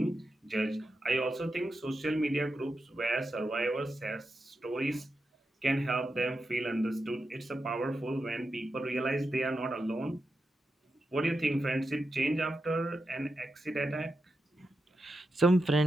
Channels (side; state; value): both; normal; correlation 0.88